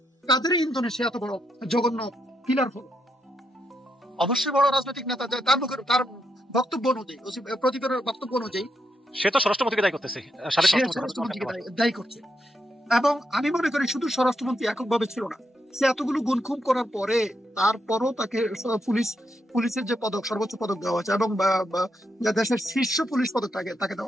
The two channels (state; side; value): normal; both; correlation 0.81